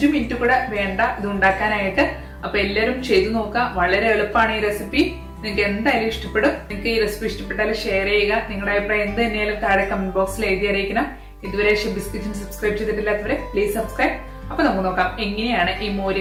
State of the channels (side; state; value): both; identical; correlation 1.00